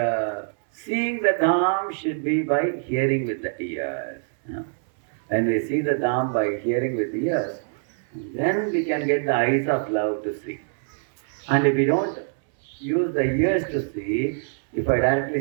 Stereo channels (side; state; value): left; silent; 62 dB below the other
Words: seeing the Dham should be by hearing with the ears. When we see the Dham by hearing with the ears, then we can get the eyes of love to see. And if we don't use the ears to see, if I